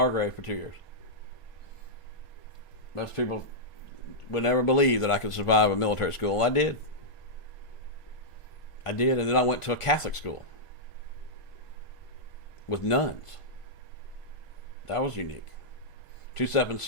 for 2 years. Most people would never believe that I could survive a military school. I did, and then I went to a Catholic school with nuns. That was unique.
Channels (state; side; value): late; right; 1.5 ms